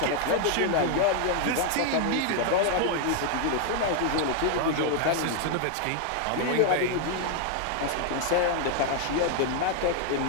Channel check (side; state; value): both; different; correlation 0.00